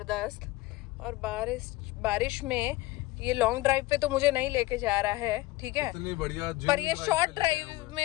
और बारिश में ये लॉन्ग ड्राइव पे तो मुझे नहीं लेके जा रहा है, ठीक है, इतनी बढ़िया पर ये शॉर्ट ड्राइव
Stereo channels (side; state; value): right; quieter; 19.1 dB